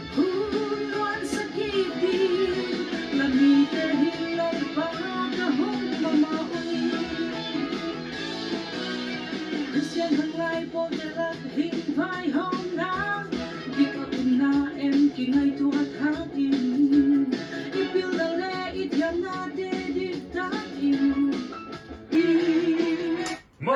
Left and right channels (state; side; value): identical; both; correlation 1.00